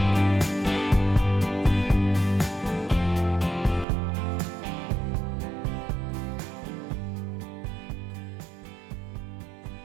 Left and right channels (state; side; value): drops out; left; at 3.9 s